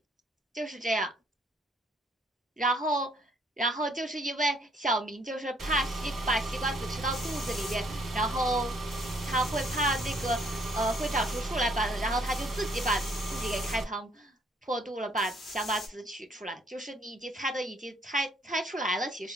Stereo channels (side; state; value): both; normal; correlation 0.66